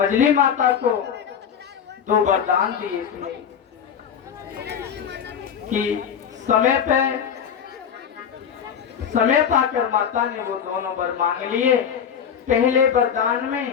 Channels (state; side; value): quieter; right; 7.9 dB